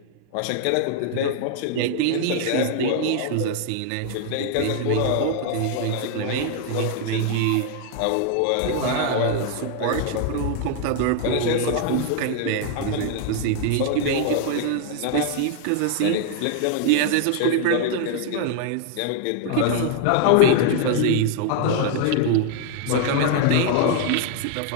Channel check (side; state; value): both; different; correlation 0.00